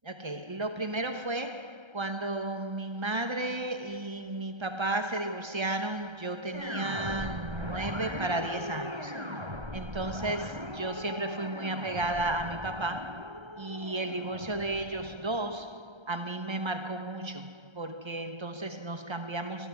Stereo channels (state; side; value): late; left; 1.3 ms